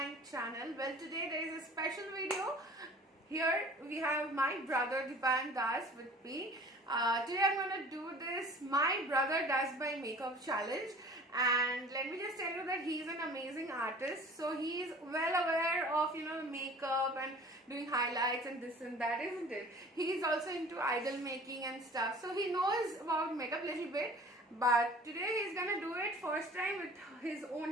channel. Well, today there is a special video. Here we have my brother Dipan Das with me. Today I'm going to do this My Brother Does My Makeup challenge, and let me just tell you that he's an amazing artist. So he's well aware of makeup and doing highlights and this and that, isn't it? He's also into idol making and stuff, so he knows about makeup a little bit. But today he's gonna do it first time with his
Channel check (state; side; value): normal; both; correlation 0.46